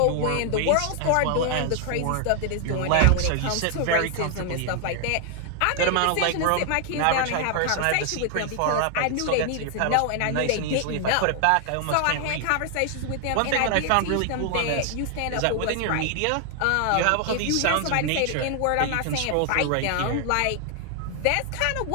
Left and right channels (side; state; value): both; different; correlation 0.00